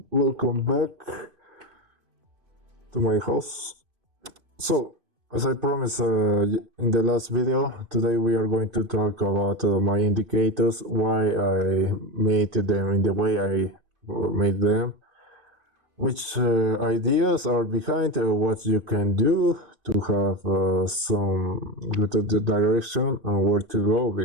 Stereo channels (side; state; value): left; late; 2.5 ms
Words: Welcome back to my house. So, as I promised in the last video, today we are going to talk about my indicators, why I made them in the way I made them, which ideas are behind what you can do to have some good direction and where to go,